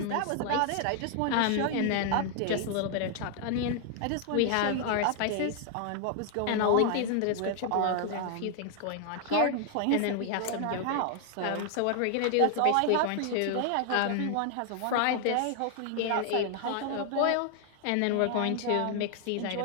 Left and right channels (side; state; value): both; different; correlation 0.00